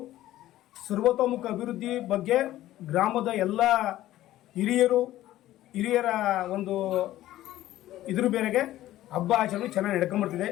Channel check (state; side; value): quieter; right; 14.5 dB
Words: ಸರ್ವತೋಮುಖ ಅಭಿವೃದ್ಧಿ ಬಗ್ಗೆ ಗ್ರಾಮದ ಎಲ್ಲ ಹಿರಿಯರ ಒಂದು ಇದ್ರ ಮೇರೆಗೆ ಹಬ್ಬ ಆಚರಣೆ ಚೆನ್ನಾಗಿ ನಡ್ಕೊಂಡ್ಬರ್ತಿದೆ.